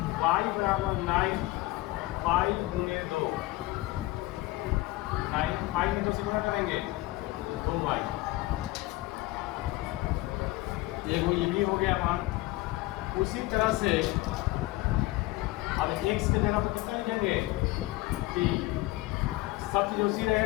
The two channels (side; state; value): right; quieter; 19.6 dB